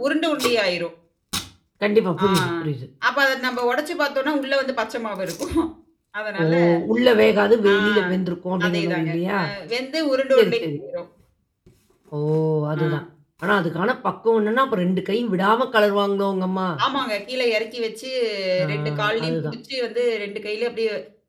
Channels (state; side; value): identical; both; correlation 1.00